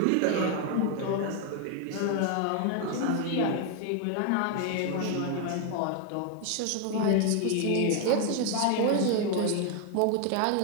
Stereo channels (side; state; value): both; different; correlation 0.01